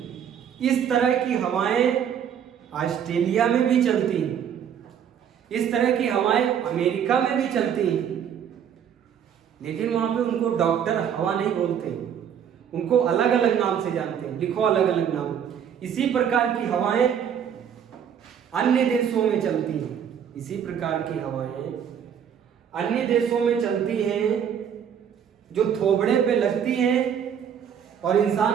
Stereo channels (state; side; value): quieter; left; 8.5 dB